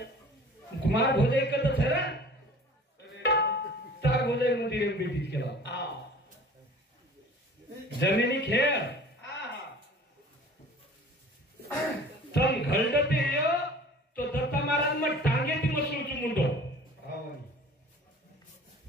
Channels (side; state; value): both; normal; correlation 0.45